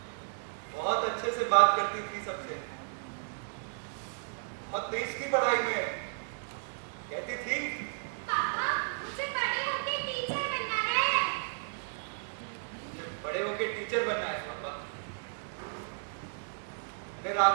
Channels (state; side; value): silent; left; digital silence